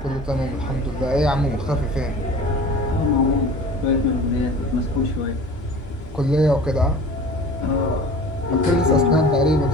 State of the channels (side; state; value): both; normal; correlation 0.41